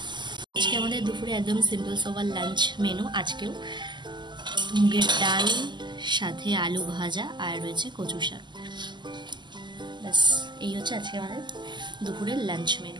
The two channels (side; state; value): left; late; 0.22 ms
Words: আজকে আমাদের দুপুরে একদম সিম্পল সোবার লাঞ্চ মেনু। আজকেও মুগের ডাল সাথে আলু ভাজা আর রয়েছে কচু শাক। ব্যাস এই হচ্ছে আজকে আমাদের দুপুরের লাঞ্চ